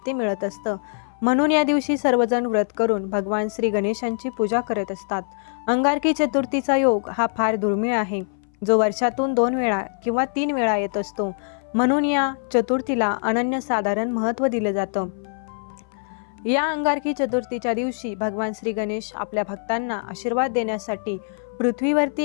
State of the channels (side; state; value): right; silent; 60 dB below the other